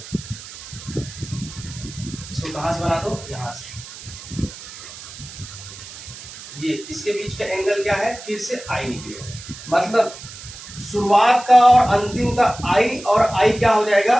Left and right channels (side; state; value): right; noise; hiss, 14 dB below the sound